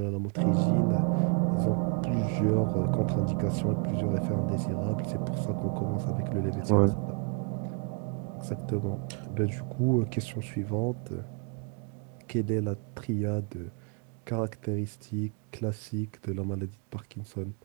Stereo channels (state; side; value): quieter; left; 35.5 dB